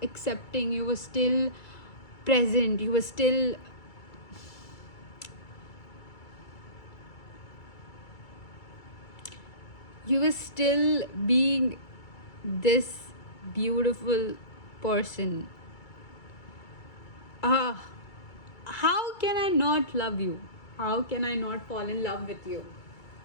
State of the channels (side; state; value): right; late; 2.3 ms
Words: accepting. You were still present. You were still... You were still being this beautiful person. How can I not love you? How can I not fall in love with you?